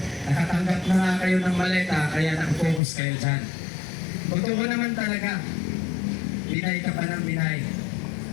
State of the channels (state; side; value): drops out; right; at 2.8 s